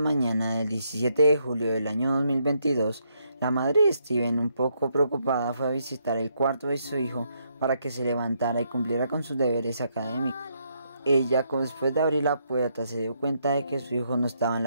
del 17 de julio del año 2022, la madre de Steven, un poco preocupada, fue a visitar el cuarto de su hijo para que se levantara y cumpliera con sus deberes académicos. Ella, después de abrir la puerta, se dio cuenta de que su hijo no estaba en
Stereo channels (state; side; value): inverted; both; correlation -0.75